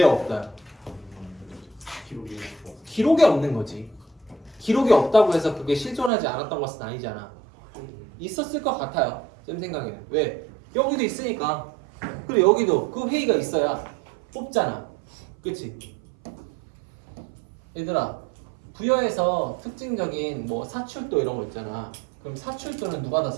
없다? 기록이 없는 거지. 기록이 없다고 해서 그게 실존하지 않았던 것은 아니잖아. 있었을 것 같아요. 쌤 생각에는. 왜? 여기도 있으니까. 그리고 여기도 그 회의가 있어야 뽑잖아. 그치? 얘들아, 부여에서 특징적인 뭐 사출도 이런 거 있잖아. 그럼 사출도는 누가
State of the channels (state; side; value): drops out; left; at 6.1 s